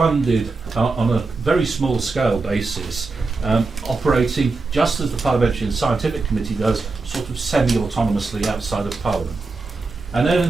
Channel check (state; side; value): quieter; left; 3.8 dB